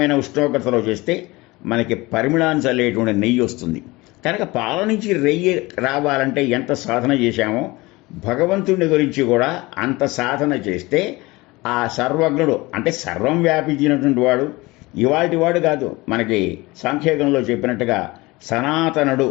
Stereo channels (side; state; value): right; quieter; 21.8 dB